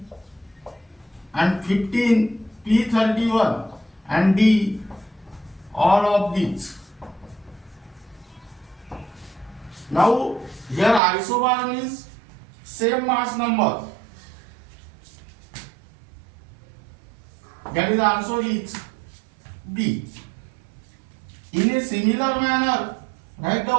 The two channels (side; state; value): left; drops out; at 11.0 s